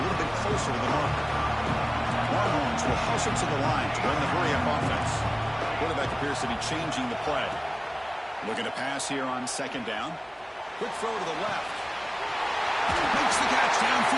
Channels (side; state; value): both; identical; correlation 1.00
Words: little bit closer to the mark. Longhorns will hustle to the line to run the hurry-up offense. Quarterback appears to be changing the play. Looking to pass here on 2nd down. Quick throw to the left. Makes the catch